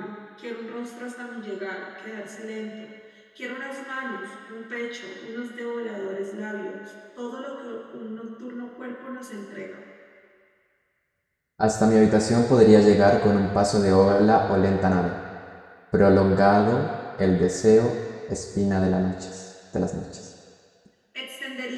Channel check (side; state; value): both; identical; correlation 1.00